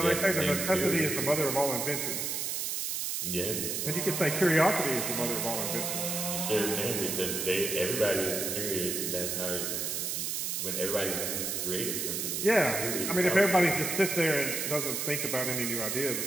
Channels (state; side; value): noise; right; hiss, 1 dB below the sound